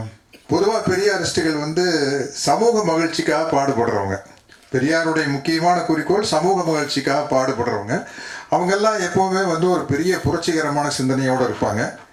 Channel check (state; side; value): identical; both; correlation 1.00